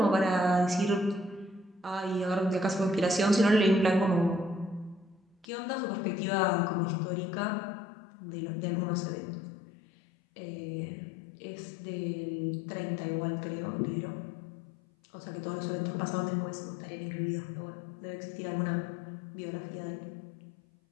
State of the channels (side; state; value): right; drops out; at 5.5 s